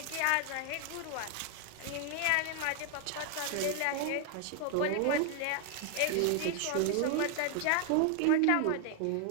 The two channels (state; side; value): different; both; correlation 0.00